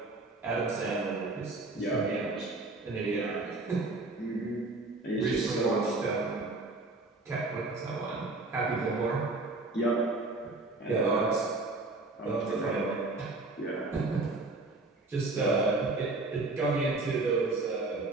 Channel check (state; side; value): quieter; left; 3.2 dB